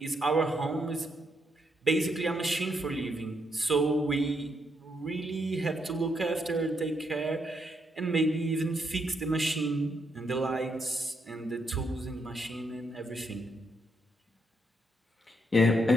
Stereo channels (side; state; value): both; normal; correlation 0.77